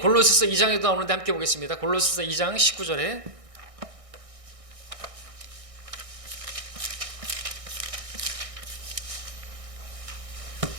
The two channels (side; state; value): left; late; 1.6 ms